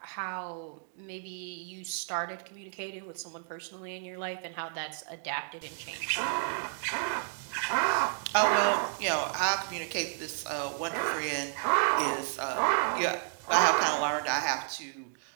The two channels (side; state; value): left; silent; digital silence